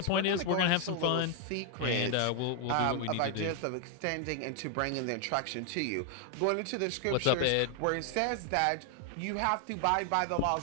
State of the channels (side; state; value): both; different; correlation 0.00